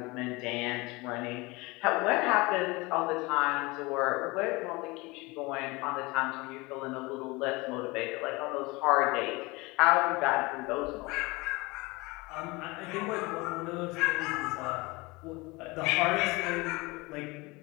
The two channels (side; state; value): right; quieter; 24.0 dB